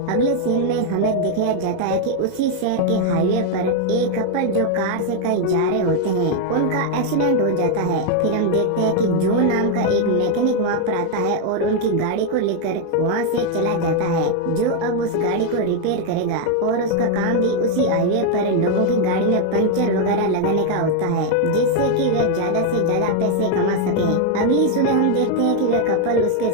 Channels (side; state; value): both; different; correlation 0.00